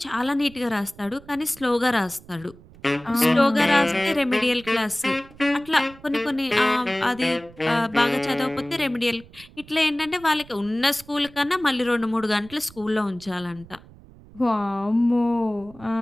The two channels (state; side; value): noise; right; rumble, 22 dB below the sound